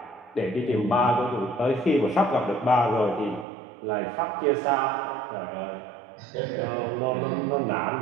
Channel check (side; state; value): left; drops out; at 3.5 s